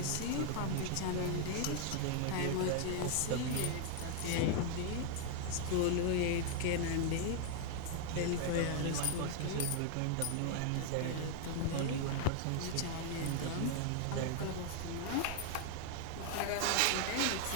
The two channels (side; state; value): both; different; correlation 0.00